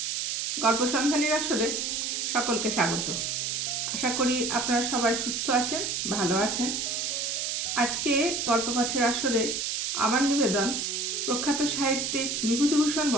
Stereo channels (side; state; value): right; noise; hiss, 1 dB below the sound